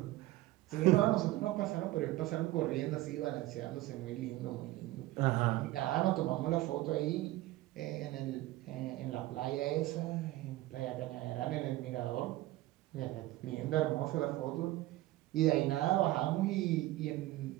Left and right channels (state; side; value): quieter; left; 17.0 dB